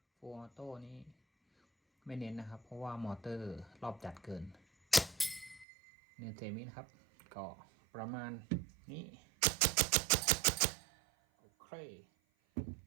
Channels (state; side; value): drops out; left; at 5.7 s